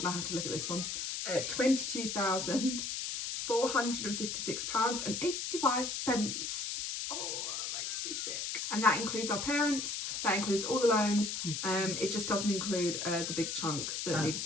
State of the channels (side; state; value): left; noise; hiss, 3 dB below the sound